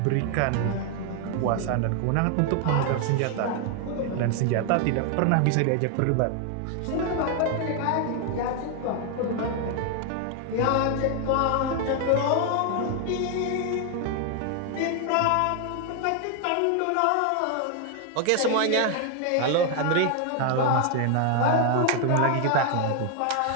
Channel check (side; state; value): both; different; correlation 0.00